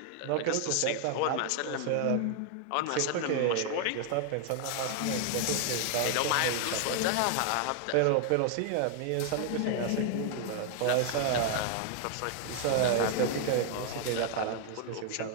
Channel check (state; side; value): different; both; correlation 0.00